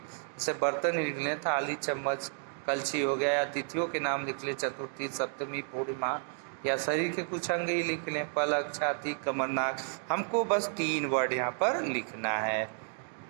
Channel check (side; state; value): left; silent; 57 dB below the other